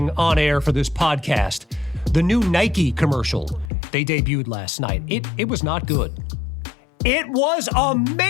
on air for this podcast the new Nike commercial they debuted last night. It was not good. It was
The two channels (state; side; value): drops out; right; at 3.7 s